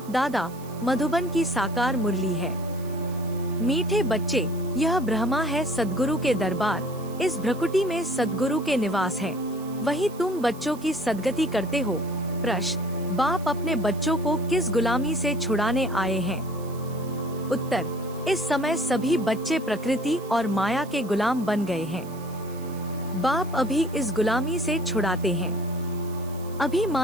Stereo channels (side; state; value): right; noise; hiss, 21 dB below the sound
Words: दादा मधुबन की साकार मुरली है। मीठे बच्चे, यह ब्रह्मा है सद्गुरु के दरबार, इस भ्रकुटी में सद्गुरु के निवास है। वही तुम बच्चों की सदगति करते हो। प्रश्न, बाप अपने बच्चों को किस गुलामी से छुड़ाने आए हैं? उत्तर, इस समय सभी बच्चे प्रकृति और माया के गुलाम बन गए हैं। बाप अभी इस गुलामी से छुड़ाते हैं। अभी